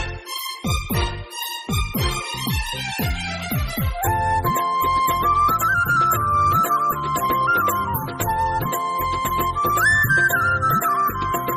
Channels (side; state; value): both; identical; correlation 1.00